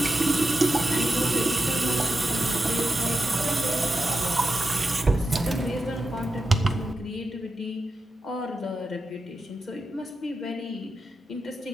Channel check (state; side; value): normal; both; correlation 0.89